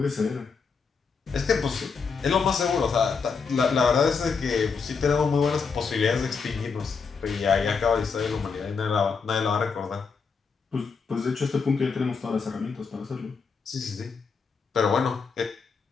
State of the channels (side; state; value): right; quieter; 5.3 dB